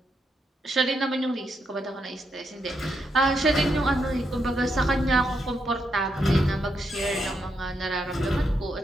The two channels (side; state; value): both; normal; correlation 0.81